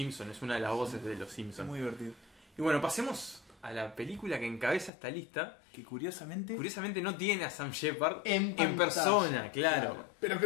Es una de las voces de Los Simpsons. Muy divertido. Y bueno, pasemos a la película que encabeza esta lista, que curiosamente no tiene a Sam Shepard en persona, claro. Pero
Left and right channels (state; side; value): drops out; right; at 4.9 s